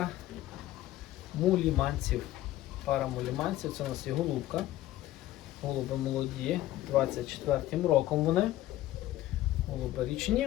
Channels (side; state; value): right; quieter; 14.9 dB